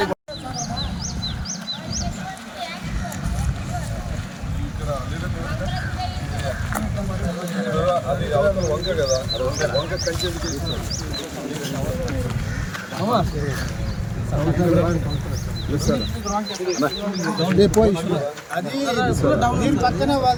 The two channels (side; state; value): both; identical; correlation 1.00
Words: వంక కదా వంక కంచె దీని పక్కన